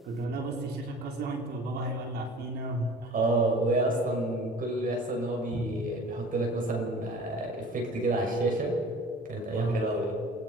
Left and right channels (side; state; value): both; normal; correlation 0.44